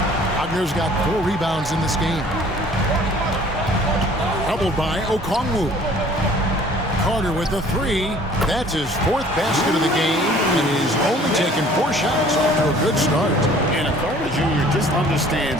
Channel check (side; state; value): both; normal; correlation 0.53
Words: Wagner's got 4 rebounds in this game. Doubled by Okongwu. Carter with the three. That's his fourth basket of the game, and he's only taken 4 shots off to a good start. And Carter Jr. just